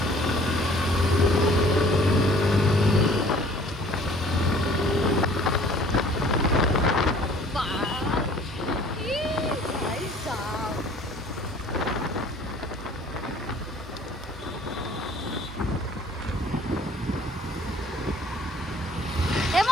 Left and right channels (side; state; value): both; normal; correlation 0.53